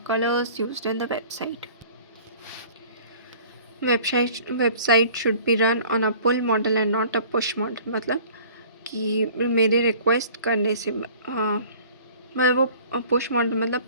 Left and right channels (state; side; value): inverted; both; correlation -0.49